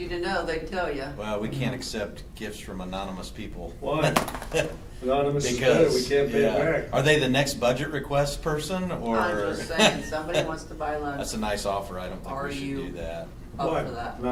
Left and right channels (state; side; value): identical; both; correlation 1.00